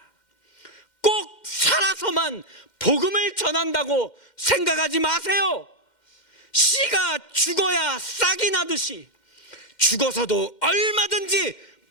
꼭 살아서만 복음을 전한다고 생각하지 마세요. 씨가 죽어야 싹이 나듯이 죽어서도 얼마든지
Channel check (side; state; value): right; late; 2.1 ms